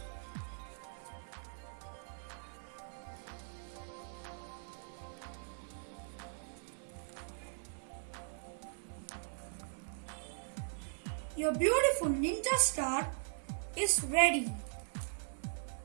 Your beautiful ninja star is ready.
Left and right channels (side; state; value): left; silent; 51 dB below the other